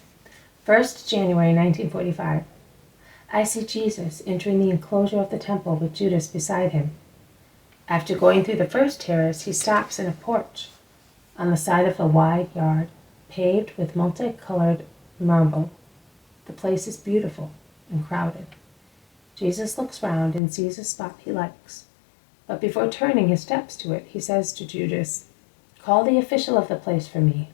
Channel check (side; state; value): right; drops out; at 20.4 s